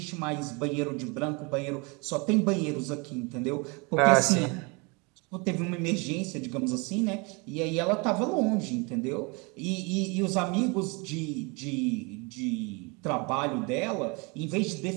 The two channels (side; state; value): left; quieter; 29.6 dB